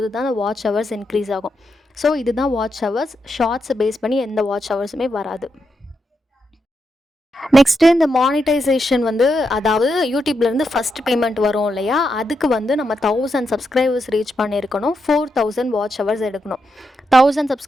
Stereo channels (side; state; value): both; normal; correlation 0.84